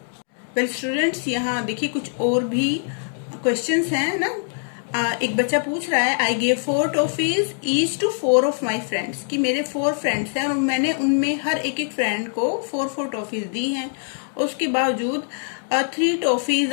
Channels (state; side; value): silent; right; 63 dB below the other